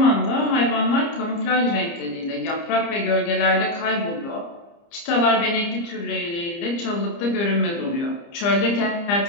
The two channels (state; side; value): late; right; 30 ms